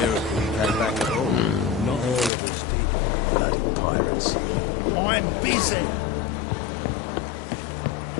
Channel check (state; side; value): drops out; right; at 2.3 s